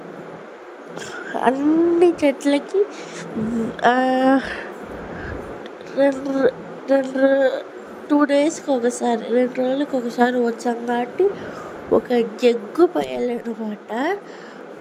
అన్ని చెట్లకి రెండు 2 డేస్కి ఒకసారి 2 రోజులకి ఒకసారి వచ్చాం కాబట్టి ఒక జగ్గు పోయాలన్నమాట.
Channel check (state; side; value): identical; both; correlation 1.00